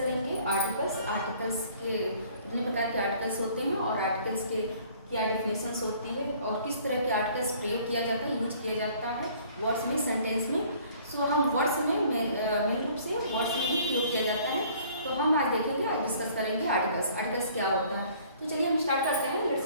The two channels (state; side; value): inverted; both; correlation -0.55